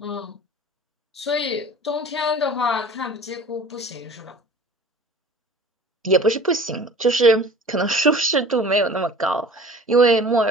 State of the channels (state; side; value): normal; both; correlation 0.45